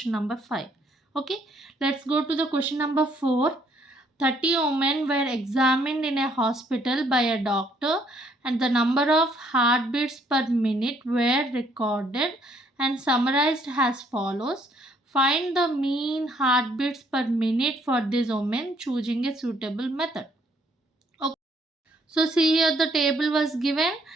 number 5. Okay, let's go to the question number 4. 30 women were examined in a hospital by a doctor and the number of heartbeats per minute were recorded and summarized as follows. Find the mean heartbeats per minute for these women, choosing a suitable method. So see here the table was given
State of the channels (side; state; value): both; normal; correlation 0.66